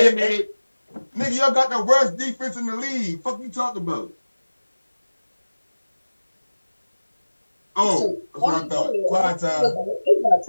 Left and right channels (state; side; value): inverted; both; correlation -1.00